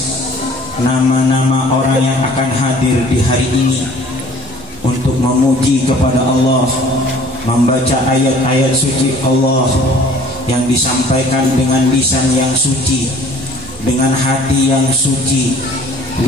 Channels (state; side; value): normal; both; correlation 0.52